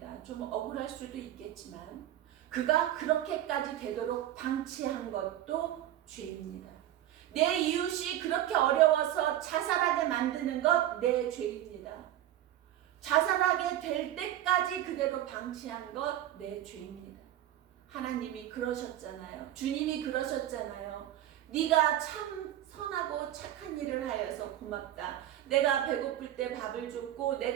좀 억울할 수도 있겠지만 그가 그렇게까지 되도록 방치한 것도 죄입니다. 내 이웃이 그렇게 어려워서 자살하게 만드는 것 내 죄입니다. 자살하게 될 때까지 그대로 방치한 것 내 죄입니다. 하나님이 그러셨잖아요. 주님이 그러셨잖아요. 네가 참 선하고 착한 일을 하여서 고맙다. 내가 배고플 때 밥을 줬고,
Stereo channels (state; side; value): quieter; left; 12.8 dB